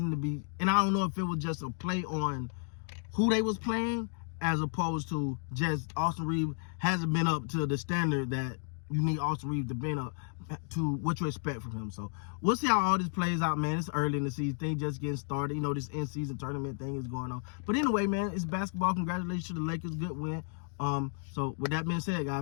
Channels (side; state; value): right; silent; 56 dB below the other